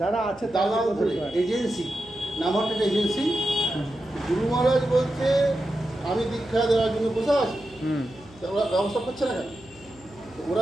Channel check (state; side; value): noise; left; hum, 24 dB below the sound